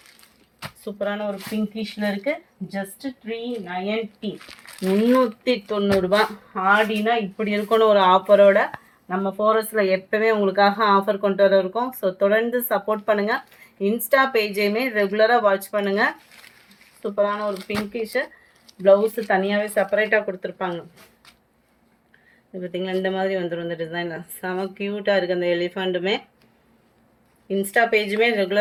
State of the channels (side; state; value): both; identical; correlation 1.00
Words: சூப்பரான ஒரு பிங்கிஷ்ல இருக்கு. ஜஸ்ட் 390, 390 ரூபா. ஆடினா இப்படி இருக்கணும் ஒரு ஆஃபரோட. நம்ம ஃபோரஸ்ட்ல எப்பவுமே உங்களுக்காக ஆஃபர் கொண்டு வர இருக்கோம். ஸோ தொடர்ந்து சப்போர்ட் பண்ணுங்க. இன்ஸ்டா பேஜையுமே ரெகுலராக வாட்ச் பண்ணுங்க. சூப்பரான ஒரு பிங்கிஷ் ப்ளவுஸ் தனியாகவே செப்பரேட்டாக கொடுத்துருப்பாங்க. இது பார்த்தீங்களா, இந்த மாதிரி வந்துடும் இந்த டிசைனில். செம க்யூட்டாக இருக்குது அந்த எலிஃபண்ட்டுமே. இன்ஸ்டா பேஜுமே